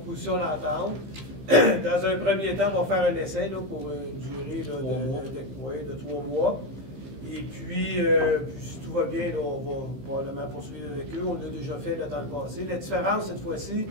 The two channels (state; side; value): late; left; 15 ms